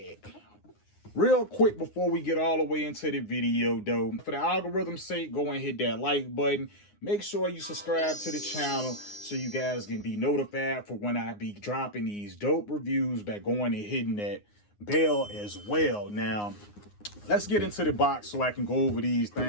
Real quick before we get all the way into the video though, for the algorithm's sake, go and hit that like button. Make sure you subscribe to the channel so you guys can be notified for when I be dropping these dope reviews by going and hitting that bell as well. Now, let's get into the box so I can go over these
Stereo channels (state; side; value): late; right; 9.7 ms